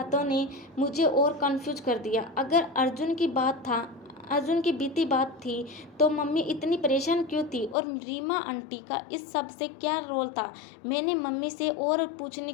ने मुझे और कंफ्यूज कर दिया। अगर अर्जुन की बीती बात थी, तो मम्मी इतनी परेशान क्यों थी? और रीमा आंटी का इस सब से क्या रोल था? मैंने मम्मी से और पूछने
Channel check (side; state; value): right; drops out; at 7.8 s